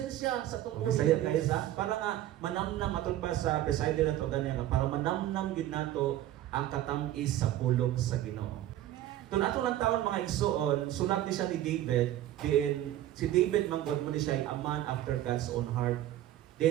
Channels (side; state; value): left; quieter; 13.3 dB